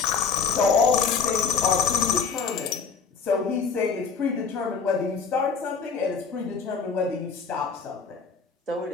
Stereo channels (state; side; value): quieter; right; 5.6 dB